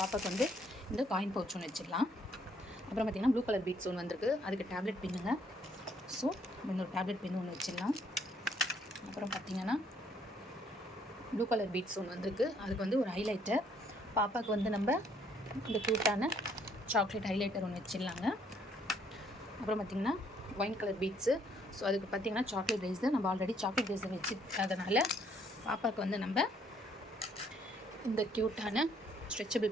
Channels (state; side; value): normal; both; correlation 0.66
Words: வந்து இந்த காயின் பவுச் ஒன்று வச்சிடலாம். அப்புறம் பார்த்திங்கன்னா ப்ளூ கலர் பீட்ஸ் ஒன்று வந்திருக்கு. அதுக்கு டேப்லெட் பின்னுங்க. ஸோ இன்னொரு டேப்லெட் பின்னு ஒன்று வச்சிடலாம். அப்புறம் பார்த்திங்கன்னா ப்ளூ கலர் பீட்ஸ் ஒன்று வந்திருக்கு. அதுக்கு வந்து ஒரு ஹைலைட்டர். பாப்பாவுக்கு வந்து நம்ம இந்த க்யூட்டான சாக்லேட் ஹைலைட்டர் ஒன்று வச்சிடலாங்க. அப்புறம் பார்த்திங்கன்னா ஒயின் கலர் பீட்ஸு. ஸோ அதுக்கு பார்த்திங்கன்னா சாக்லேட் ரேசர். நம்ம ஆல்ரெடி சாக்லேட் ரேசர் வச்சுருக்கிறதுனால பாப்பாவுக்கு வந்து நம்ம இந்த க்யூட்டான ஸ்ட்ரெச்சபிள்